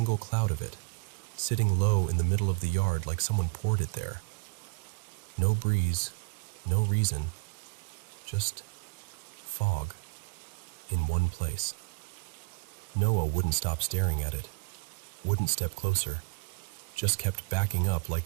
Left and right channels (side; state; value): left; quieter; 31.1 dB